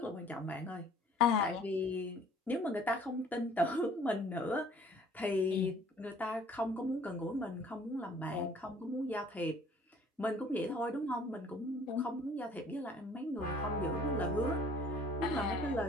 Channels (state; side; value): normal; both; correlation 0.55